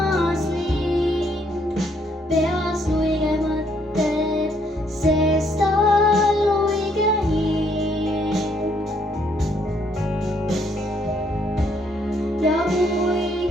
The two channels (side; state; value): both; normal; correlation 0.70